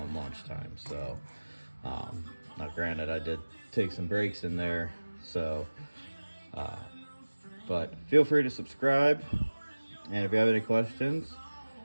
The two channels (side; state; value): both; inverted; correlation -1.00